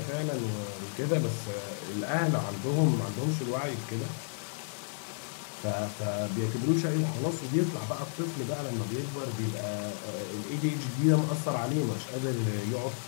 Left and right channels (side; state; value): right; silent; digital silence